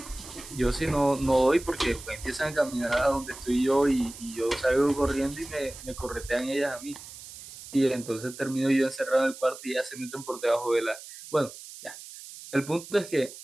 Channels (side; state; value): right; noise; hiss, 15 dB below the sound